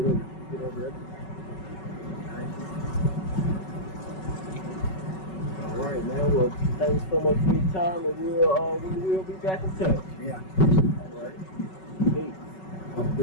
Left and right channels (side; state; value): right; late; 5.3 ms